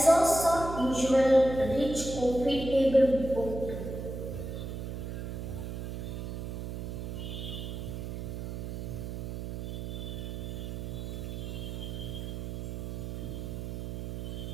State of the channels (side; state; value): right; noise; hum, 5 dB below the sound